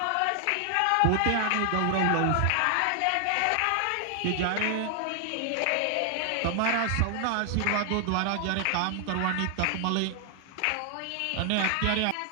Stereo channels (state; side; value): different; both; correlation 0.00